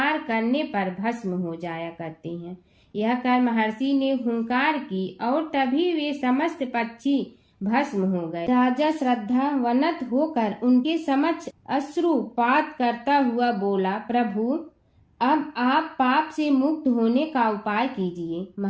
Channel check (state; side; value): identical; both; correlation 1.00